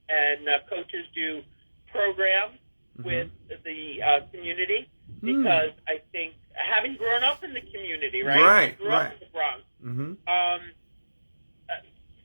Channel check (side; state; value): both; inverted; correlation -1.00